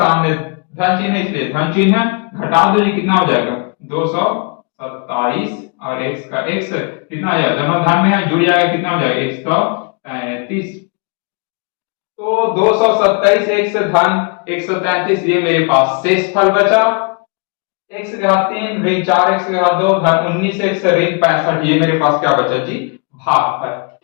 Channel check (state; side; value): quieter; right; 34.8 dB